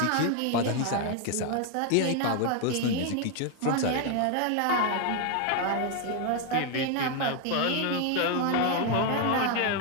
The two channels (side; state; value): both; different; correlation 0.01